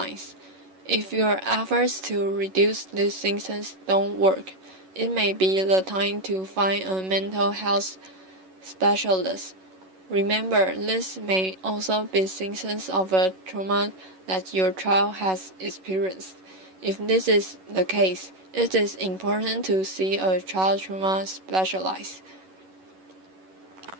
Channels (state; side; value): late; left; 11 ms